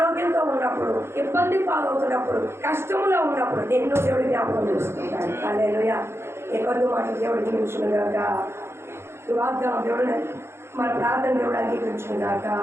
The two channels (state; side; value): late; left; 0.12 ms